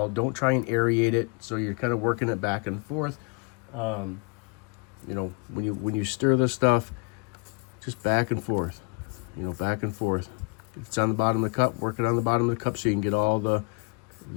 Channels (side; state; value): right; quieter; 34.8 dB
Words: Don't try and aerate it, so you're kind of working it back and forth. When you stir this stuff, just back and forth, back and forth. If it's on the bottom of the cup, work it on the bottom of the cup so you can get all the